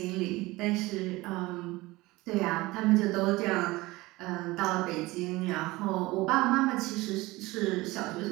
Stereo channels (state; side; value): quieter; left; 20.4 dB